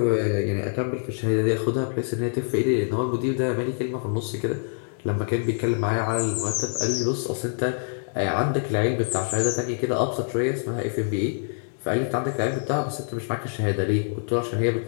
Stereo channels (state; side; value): silent; right; digital silence